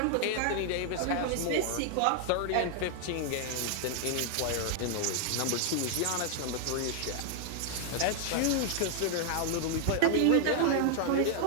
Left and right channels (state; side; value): different; both; correlation 0.00